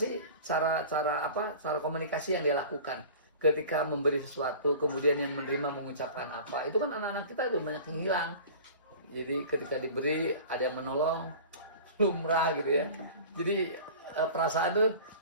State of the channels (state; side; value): inverted; both; correlation -0.40